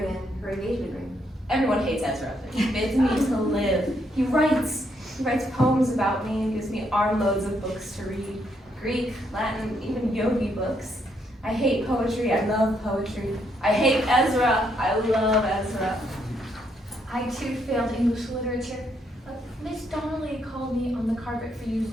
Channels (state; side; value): normal; both; correlation 0.75